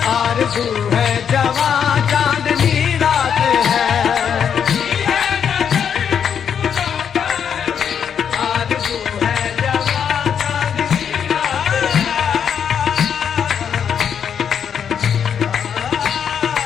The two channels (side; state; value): right; quieter; 7.8 dB